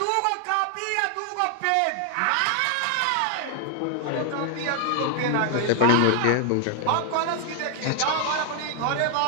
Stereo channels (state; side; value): different; both; correlation 0.00